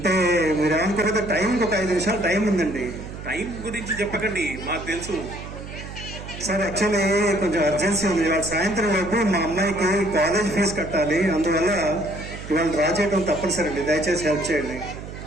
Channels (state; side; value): noise; right; hum, 11 dB below the sound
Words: మీరు ఏమనుకోకపోతే టైంకి ఒక 5 నిమిషాలు టైం ఉందండి. టైం గురించి చెప్పకండి, మాకు తెలుసు. సార్ యాక్చువల్లీ కొంచెం అర్జెన్సీ ఉంది. ఇవాళ సాయంత్రం లోపు మా అమ్మాయికి కాలేజ్ ఫీజు కట్టాలి, అందువల్ల ఇవాళ డ్రా చేయడం తప్పనిసరి అండి. దయచేసి హెల్ప్ చేయండి.